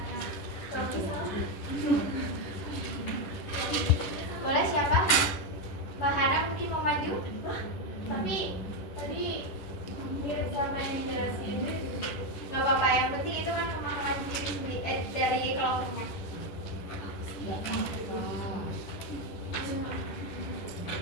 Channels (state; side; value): late; right; 10 ms